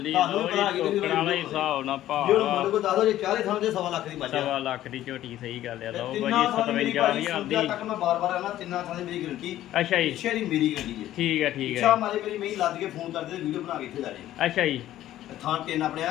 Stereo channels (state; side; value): quieter; right; 13.4 dB